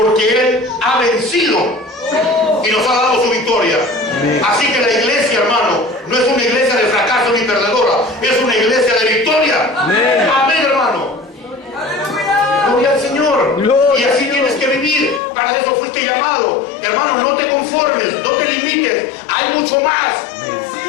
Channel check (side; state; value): right; drops out; at 15.2 s